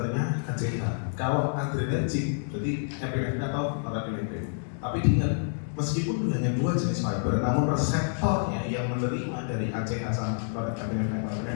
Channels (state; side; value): silent; right; digital silence